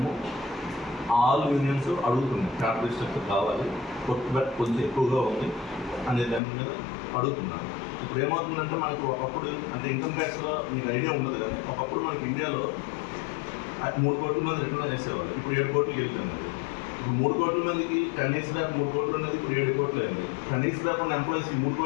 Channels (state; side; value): drops out; right; at 6.4 s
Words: ఆల్ యూనియన్స్ అడుగుతున్నాయి క్యాపిటల్ స్ట్రక్చర్ కావాలి, బట్ కొంచెం ఎక్కువగా ఉంది అనే దాని మీద అడుగుతున్నారు. ఇప్పుడు ఏమవుతుందంటే మనకు ఒకప్పుడు అంటే ఇన్కమ్ ట్యాక్స్లో మీకు ఐడియా ఉండదు కానీ ఒకప్పుడు మనకి ఇండియాలో 3 కోట్ల మంది రిటర్న్ చేసేవాళ్ళు. ఇప్పుడు 7 కోట్లకి వెళ్తున్నారు. ఇప్పుడు 3 కోట్ల మందికి 10 years దాకా 3 కోట్లు ఉన్నది ఇప్పుడు 7 కోట్లు అయింది. 10 years దాకా ఉన్న ఎంప్లాయీస్ 3